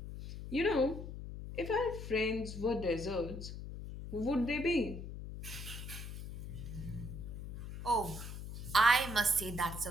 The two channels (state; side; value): noise; left; hum, 9 dB below the sound